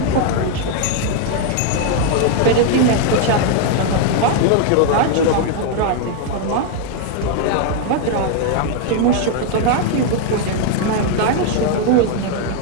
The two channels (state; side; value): different; both; correlation 0.01